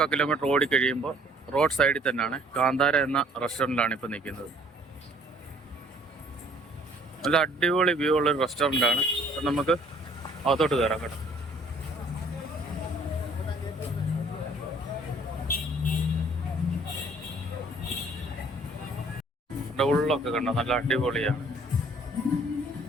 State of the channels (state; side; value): normal; both; correlation 0.58